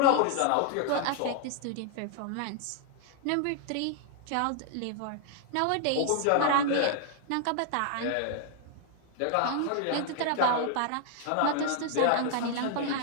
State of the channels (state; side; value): different; both; correlation 0.00